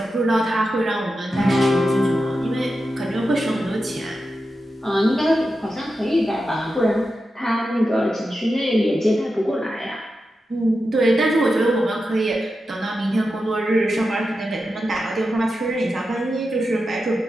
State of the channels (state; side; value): normal; both; correlation 0.90